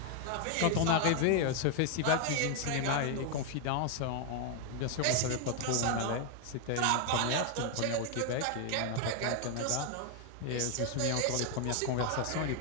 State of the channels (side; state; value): both; different; correlation 0.00